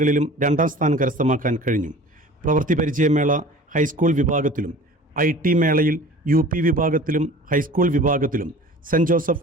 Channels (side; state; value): both; normal; correlation 0.42